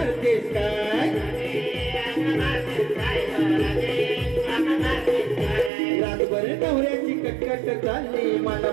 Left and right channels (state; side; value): drops out; left; at 5.7 s